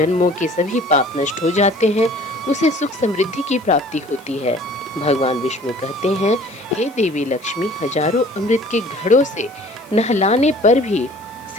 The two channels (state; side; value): noise; left; hiss, 26 dB below the sound